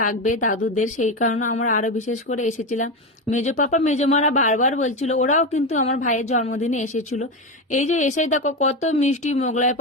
দাদুদের, সেই কারণে আমরা আরো বিশেষ করে এসেছিলাম। মেজো পাপা মেজো মারা বারবার বলছিল, ওরাও কিন্তু আমার ভাইয়ের জন্মদিনে এসেছিল। এই যে এসে দেখো কত মিষ্টি মোগলাই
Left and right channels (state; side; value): normal; both; correlation 0.16